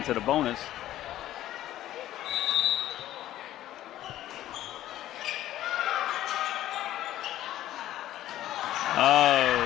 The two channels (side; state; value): right; quieter; 13.5 dB